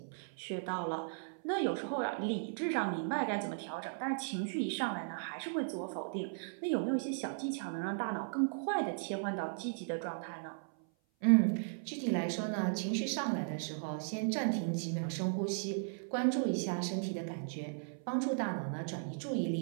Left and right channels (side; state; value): left; silent; 53 dB below the other